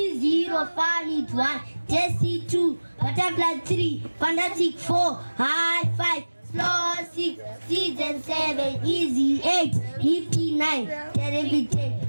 Fanny 1, Tessie 2, Butterfly 3, Fantastic 4, High 5, Slow 6, Season 7, Easy 8, Nifty 9, Terrific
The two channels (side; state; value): both; inverted; correlation -1.00